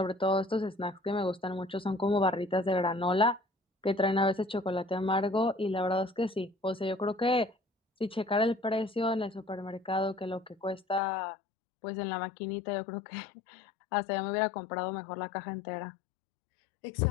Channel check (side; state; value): right; drops out; at 11.0 s